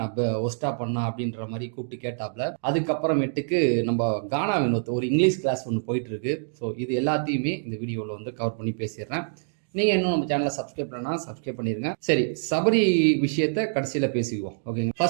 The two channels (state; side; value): silent; left; digital silence